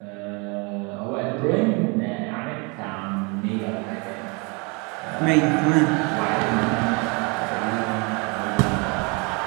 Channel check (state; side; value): quieter; left; 31.0 dB